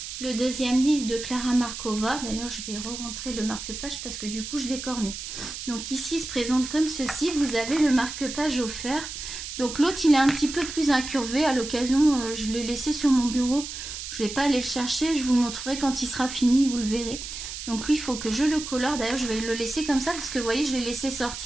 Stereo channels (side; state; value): right; noise; hiss, 8 dB below the sound